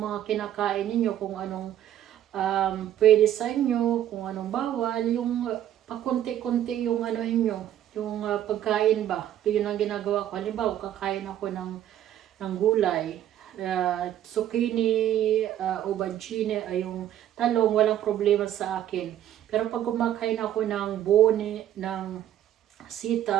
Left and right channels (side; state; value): left; quieter; 11.5 dB